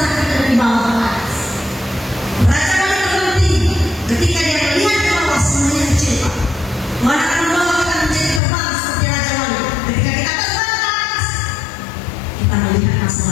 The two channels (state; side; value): drops out; right; at 8.4 s